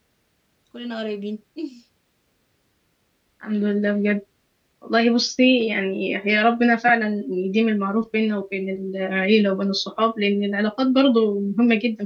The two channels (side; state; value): both; identical; correlation 1.00